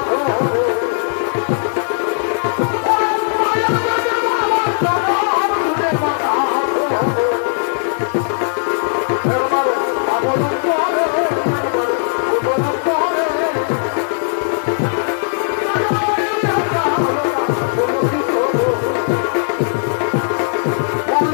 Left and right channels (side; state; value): right; silent; digital silence